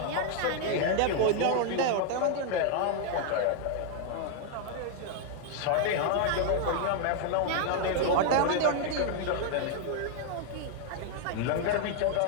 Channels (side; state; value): both; different; correlation 0.00